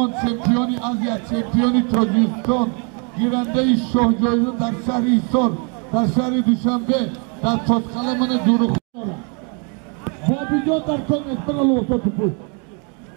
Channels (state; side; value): quieter; left; 36.7 dB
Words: چمپیونی آسیا چمپیونی تاجیکستان گیرنده شاهجویان در شهر ایسار در شهر دوشنبه در تاسقله من زورخان بابیجان در کن اسپنا لوسا توپوش